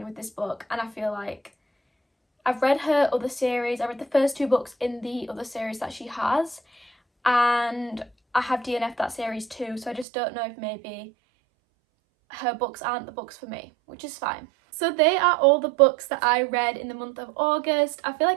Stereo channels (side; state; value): left; drops out; at 10.1 s